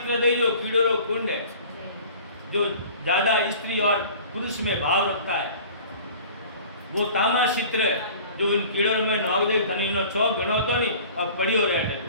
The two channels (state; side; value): inverted; both; correlation -0.45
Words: दई जो कीड़ोरो कुंड है, जो ज्यादा स्त्री और पुरुष में भाव रखता है, वो तामा चित्र जो इन कीड़ों में नाव दे खनीनो चौक गणो तो नहीं अब पड़ियो रहे।